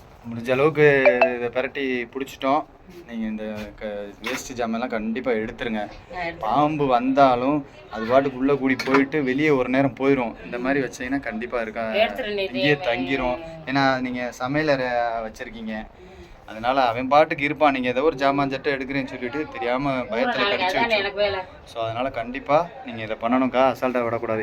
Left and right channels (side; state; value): both; identical; correlation 1.00